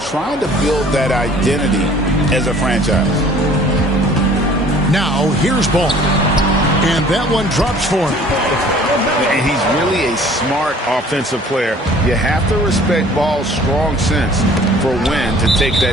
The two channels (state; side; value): normal; both; correlation 0.52